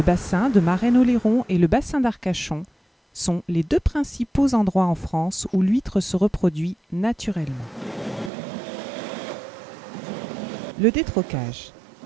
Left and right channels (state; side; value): drops out; left; at 8.3 s